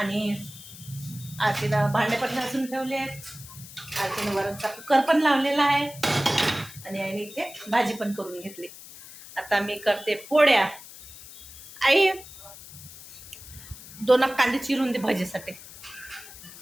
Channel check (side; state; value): left; noise; hiss, 16 dB below the sound